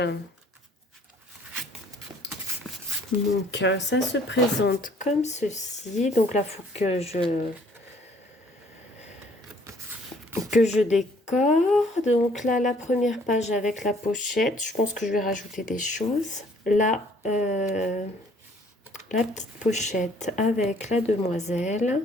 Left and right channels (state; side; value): normal; both; correlation 0.59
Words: Donc, ça se présente comme ceci. Donc là, il faut que je décore. Donc là, la première page avec la pochette. Je pense que je vais rajouter des choses. Là, la petite pochette avec la demoiselle.